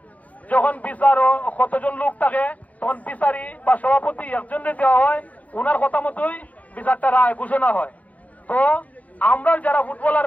যখন বিচার কতজন লোক থাকে তখন বিচারি বা সভাপতি একজনকে দেওয়া হয়, উনার কথা মতোই বিচারটা রায় ঘোষণা হয়। তো আমরা যারা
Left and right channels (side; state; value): right; late; 0.072 ms